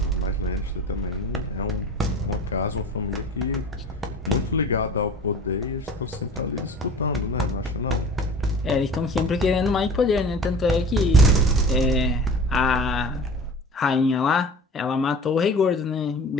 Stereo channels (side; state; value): both; normal; correlation 0.40